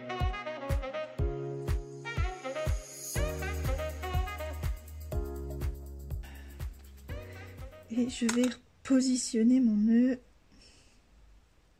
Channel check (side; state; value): both; identical; correlation 1.00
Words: Et je vais positionner mon nœud.